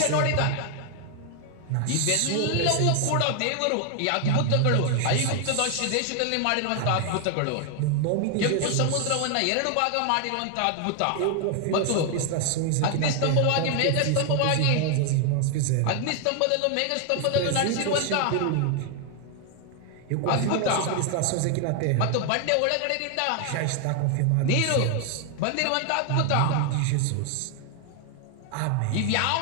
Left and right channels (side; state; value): both; different; correlation 0.00